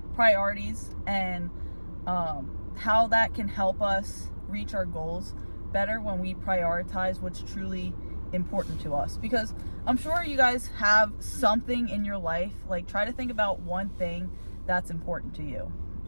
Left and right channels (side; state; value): both; inverted; correlation -1.00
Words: priorities and how that can help us reach our goals better when we prioritize what's truly important to us. Because I'm sure you guys have something in your life, like try to think about one thing that's important to you.